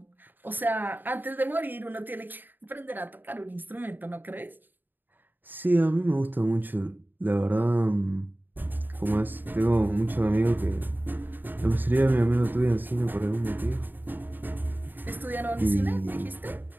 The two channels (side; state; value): left; late; 0.091 ms